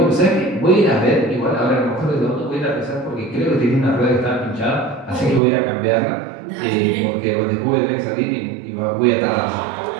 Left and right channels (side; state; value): left; drops out; at 5.4 s